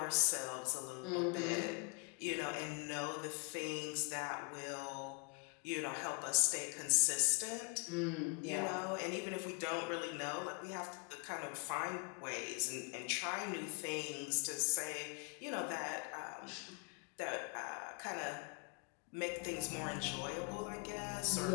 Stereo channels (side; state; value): right; quieter; 34.9 dB